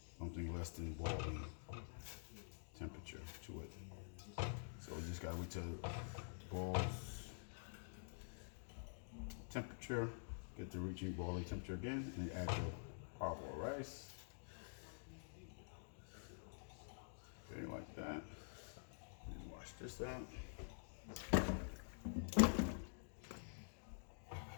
something less than boiling temperature to it. So we just got to wait till it boils temperature, get to reaching boiling temperature again, and add your parboiled rice. Okay, like that. And wash this out.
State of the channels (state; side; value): silent; right; digital silence